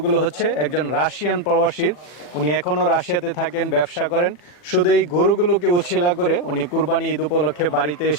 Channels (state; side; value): late; right; 40 ms